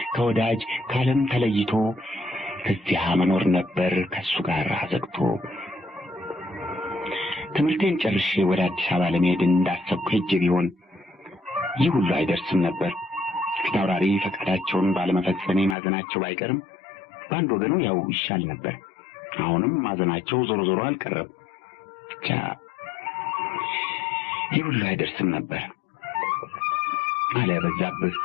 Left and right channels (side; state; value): right; drops out; at 15.8 s